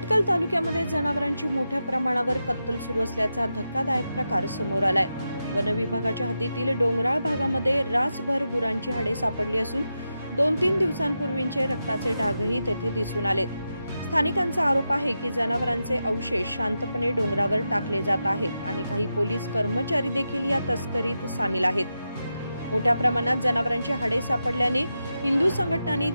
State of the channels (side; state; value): both; inverted; correlation -0.89